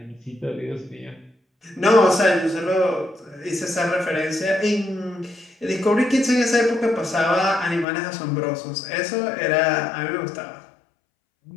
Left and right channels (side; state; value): right; drops out; at 7.9 s